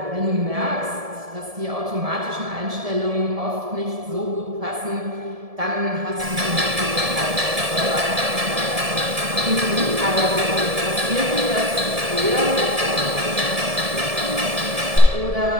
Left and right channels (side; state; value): left; late; 1.7 ms